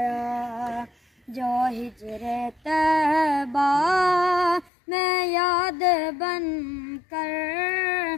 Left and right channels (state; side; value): drops out; right; at 4.7 s